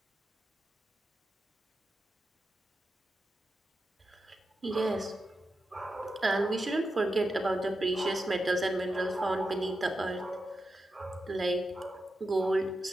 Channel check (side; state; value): both; normal; correlation 0.89